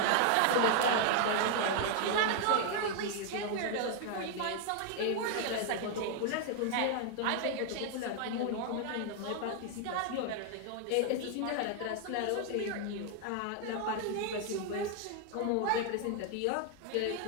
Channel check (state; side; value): different; both; correlation 0.00